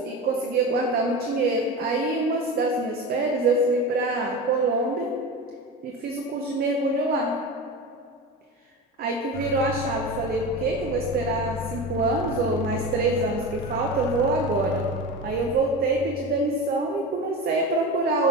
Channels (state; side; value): normal; both; correlation 0.27